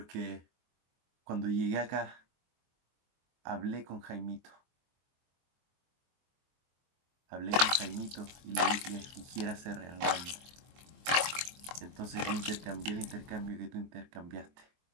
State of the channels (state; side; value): late; left; 24 ms